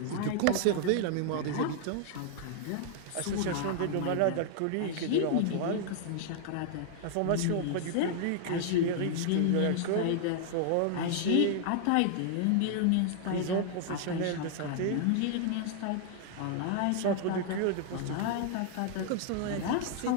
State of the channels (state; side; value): different; both; correlation 0.00